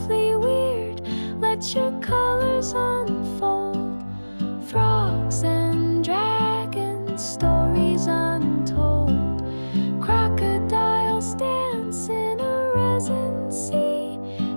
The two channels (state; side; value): inverted; both; correlation -1.00